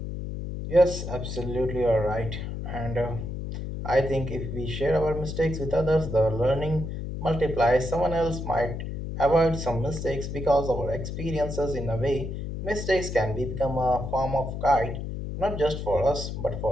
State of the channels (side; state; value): left; noise; hum, 6 dB below the sound